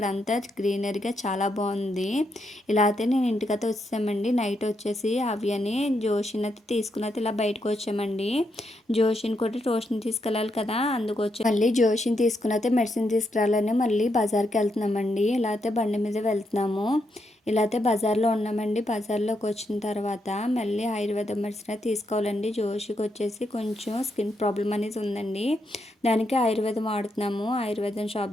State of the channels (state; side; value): normal; both; correlation 0.80